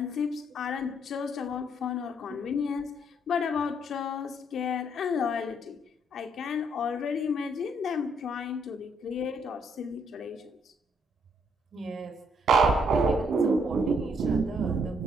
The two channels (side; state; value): both; normal; correlation 0.70